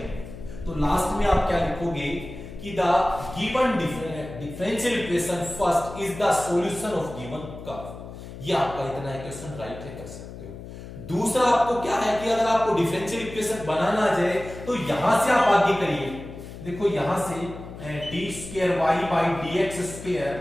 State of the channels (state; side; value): noise; left; hum, 13 dB below the sound